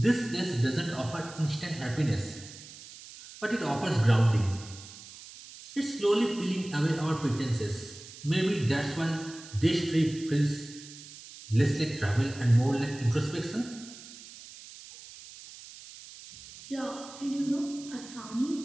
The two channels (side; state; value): right; noise; hiss, 16 dB below the sound